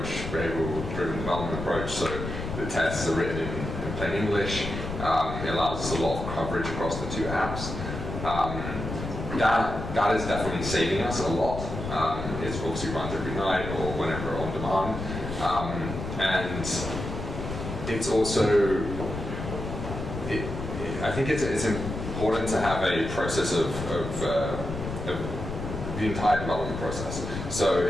variable-driven development approach. So the tests are written in plain English. It allows us a lot of coverage across the two apps. That is definitely saving us a lot. It's obviously runs every night or whenever on demand, and it's also I think it's important to have a process of the entire development process. So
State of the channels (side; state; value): left; noise; rumble, 6 dB below the sound